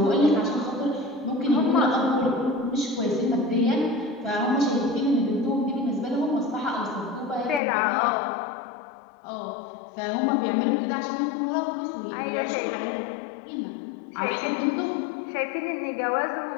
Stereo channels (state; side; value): drops out; right; at 7.6 s